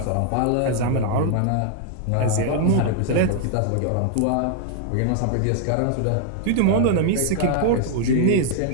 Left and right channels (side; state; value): both; different; correlation 0.00